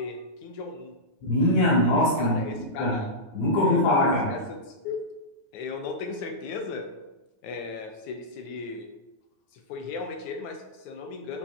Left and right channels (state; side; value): late; right; 9.4 ms